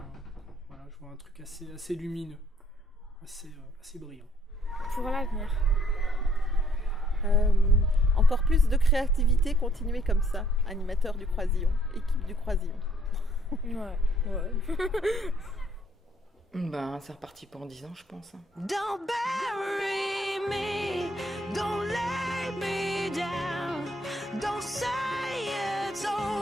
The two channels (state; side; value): normal; both; correlation 0.65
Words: vois un truc assez lumineux, assez brillant. Pour l'avenir. Encore plus de créativité, continuer comme ça. Animateur du Croisillon, équipe du Croisillon. Ouais. C'est reparti pour 10 ans, je pense. Don't bury me, don't lay me down, don't say it's